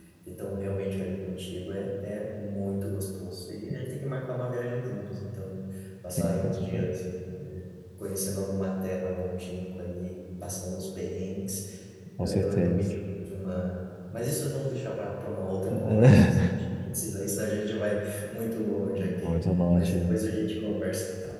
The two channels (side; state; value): both; identical; correlation 1.00